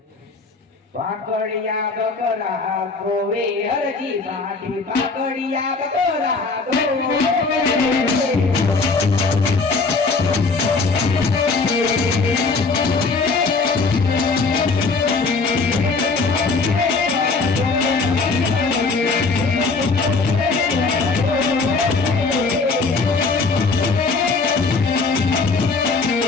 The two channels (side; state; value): right; quieter; 4.1 dB